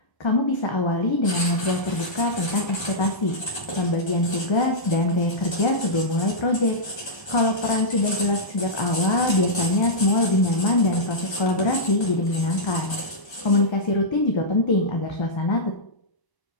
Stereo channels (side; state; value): right; late; 1.3 ms